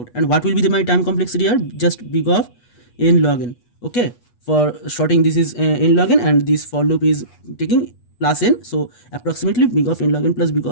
And what will be my time complexity here? Just big of n log n. Okay, for sorting this is n log n, and this for loop is taking plus n, so approximately big of n log n plus big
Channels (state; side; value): late; right; 8.3 ms